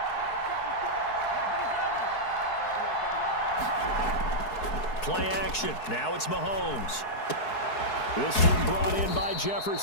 Play action. Now it's Mahomes. This one brought in by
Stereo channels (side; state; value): right; late; 4.7 ms